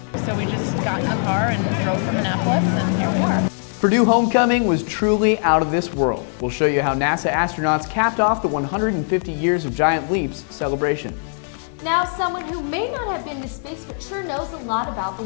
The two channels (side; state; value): right; silent; 65 dB below the other